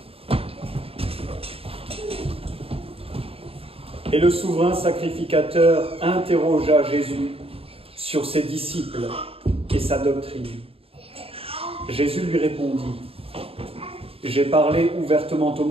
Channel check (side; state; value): left; late; 0.28 ms